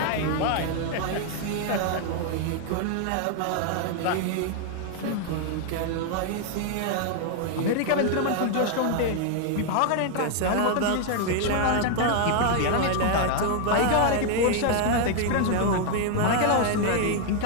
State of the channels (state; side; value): different; both; correlation 0.00